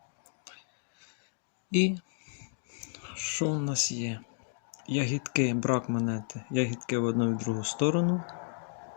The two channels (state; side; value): silent; right; digital silence